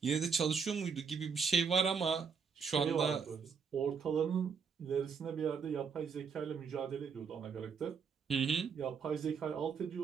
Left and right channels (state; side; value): quieter; left; 6.0 dB